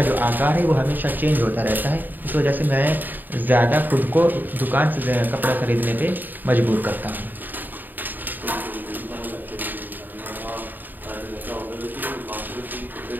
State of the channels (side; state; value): left; late; 0.089 ms